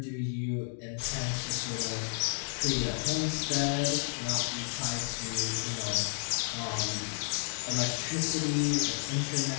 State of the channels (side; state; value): right; silent; 57 dB below the other